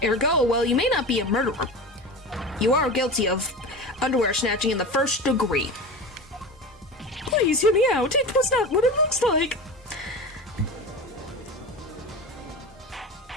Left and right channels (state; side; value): normal; both; correlation 0.28